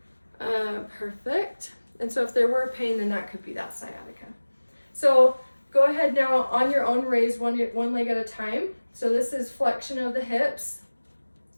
Perfect. And so if there were pain, then that could be that sciatica. So go ahead now on your own, raise one leg at a time. So this is flexion of the hips.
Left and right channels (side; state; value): both; inverted; correlation -1.00